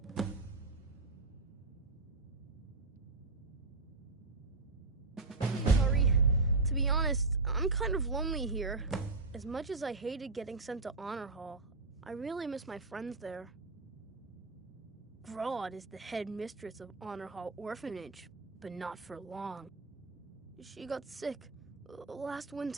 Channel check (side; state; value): left; quieter; 3.5 dB